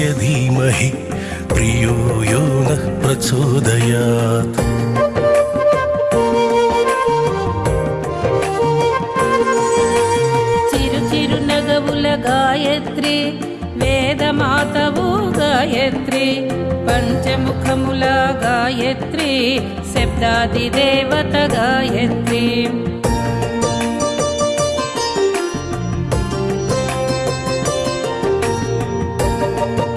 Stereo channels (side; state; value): both; identical; correlation 1.00